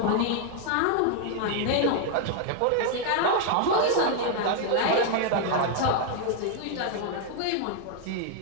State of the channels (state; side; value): different; both; correlation 0.00